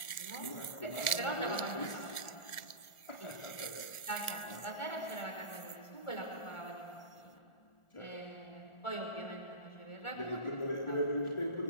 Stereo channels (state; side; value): late; right; 1.4 ms